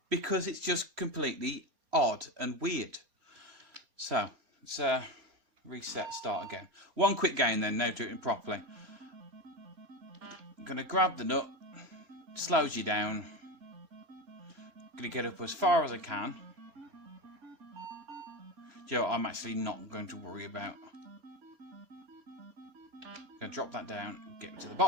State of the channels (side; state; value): left; late; 4.3 ms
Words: because it's just completely odd and weird. So, let's reset, start again. One quick game then, now do it properly. I'm going to grab the nut, slows you down. I'm going to get up as far as I can. You know what, I'm actually not going to worry about. I'm going to drop that down, get to the